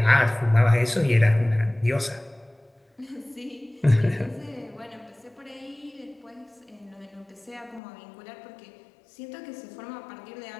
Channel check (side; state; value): right; drops out; at 7.8 s